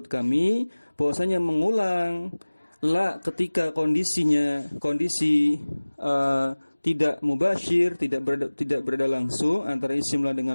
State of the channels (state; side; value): inverted; both; correlation -1.00